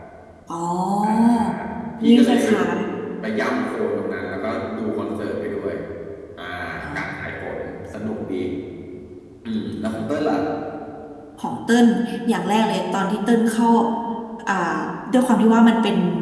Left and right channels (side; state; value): both; identical; correlation 1.00